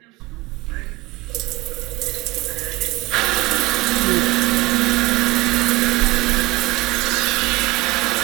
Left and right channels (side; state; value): left; quieter; 20.2 dB